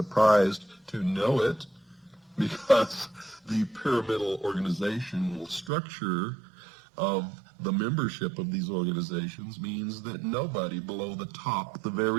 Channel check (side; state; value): left; drops out; at 5.7 s